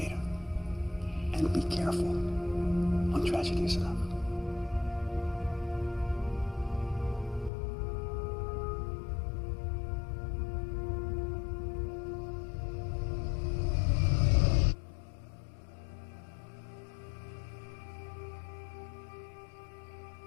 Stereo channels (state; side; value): drops out; right; at 7.5 s